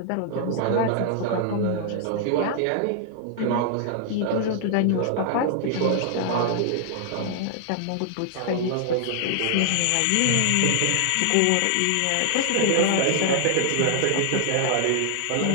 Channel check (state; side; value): different; both; correlation 0.00